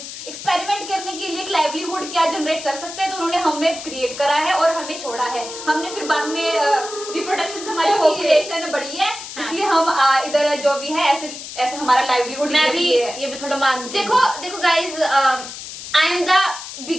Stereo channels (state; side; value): noise; left; hiss, 11 dB below the sound